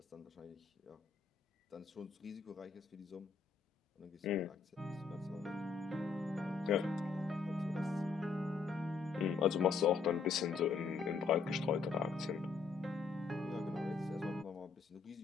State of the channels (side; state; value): right; quieter; 5.0 dB